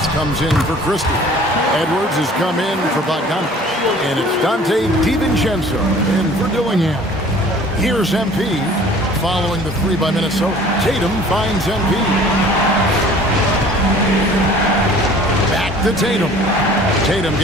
comes in for Christie. Edwards has come in for Bogdanovich. And it's Dante DiVincenzo in for Dillingham. Here's MP following the 3 by Minnesota. Tatum finds MP. Back to Tatum. Tatum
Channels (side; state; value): both; normal; correlation 0.49